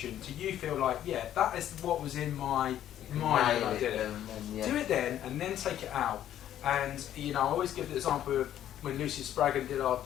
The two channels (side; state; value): right; quieter; 11.4 dB